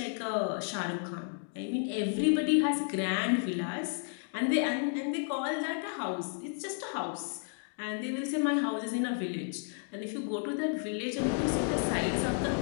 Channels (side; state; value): right; silent; 56 dB below the other